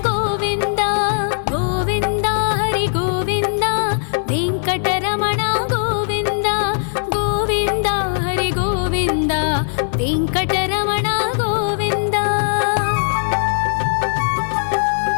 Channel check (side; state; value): right; silent; 67 dB below the other